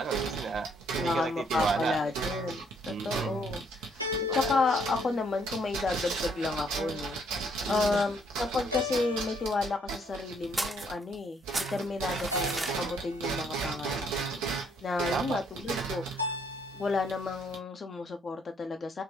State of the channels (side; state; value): both; normal; correlation 0.67